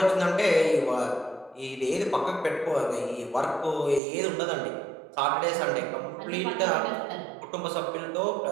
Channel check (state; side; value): drops out; left; at 4.0 s